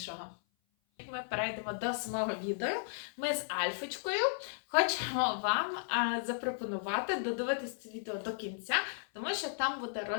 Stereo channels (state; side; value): silent; right; 54 dB below the other